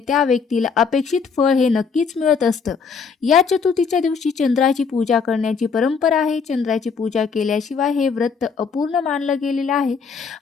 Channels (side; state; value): right; quieter; 5.6 dB